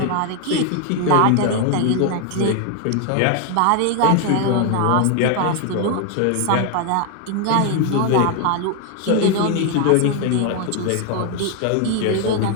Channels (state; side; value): different; both; correlation 0.01